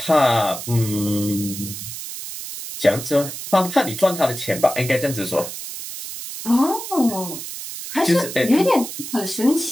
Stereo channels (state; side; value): noise; right; hiss, 9 dB below the sound